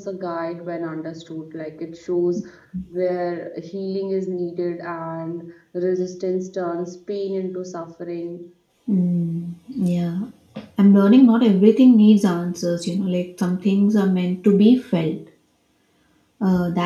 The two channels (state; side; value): identical; both; correlation 1.00